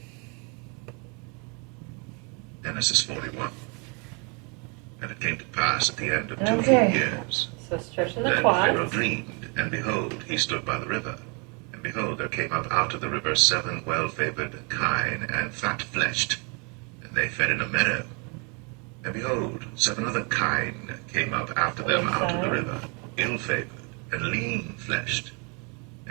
Genesis 41. And it came to pass at the end of 2 full years. So stretching the then quads. Pharaoh dreamed, and behold, he stood by the river. And behold, there came up out of the river 7 well-favored kine and fat-fleshed, and they fed in a meadow. And behold, 7 other kine came up after them out of the river, ill-favored and lean-fleshed,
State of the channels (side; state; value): left; quieter; 33.9 dB